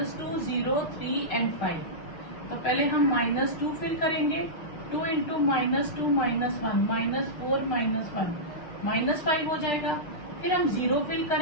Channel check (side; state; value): right; late; 6.5 ms